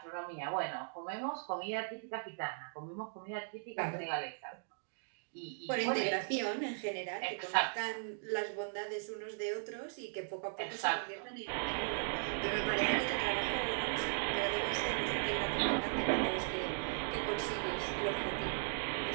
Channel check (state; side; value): silent; left; digital silence